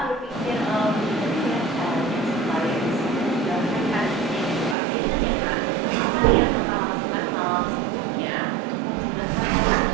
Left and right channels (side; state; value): left; drops out; at 4.8 s